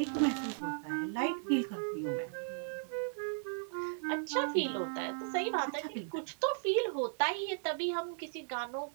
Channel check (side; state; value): left; silent; 54 dB below the other